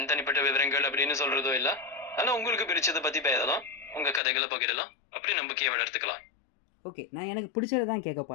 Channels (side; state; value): right; drops out; at 4.2 s